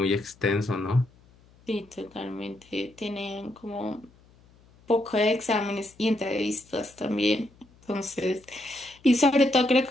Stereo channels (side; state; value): left; noise; hum, 28 dB below the sound